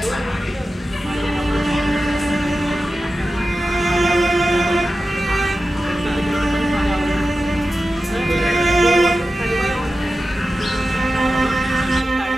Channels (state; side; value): normal; both; correlation 0.93